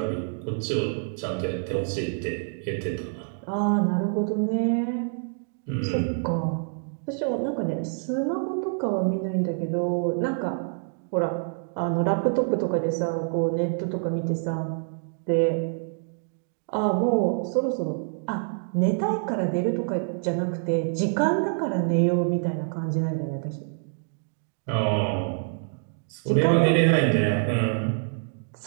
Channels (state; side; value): silent; left; digital silence